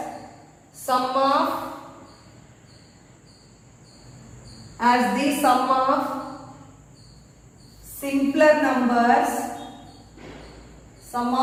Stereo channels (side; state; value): both; identical; correlation 1.00